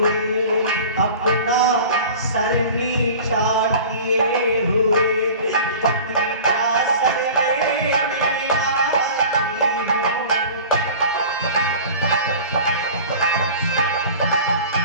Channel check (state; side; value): inverted; both; correlation -0.39